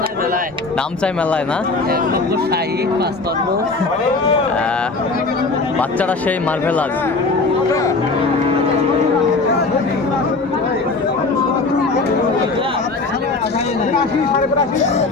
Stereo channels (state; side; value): quieter; right; 3.7 dB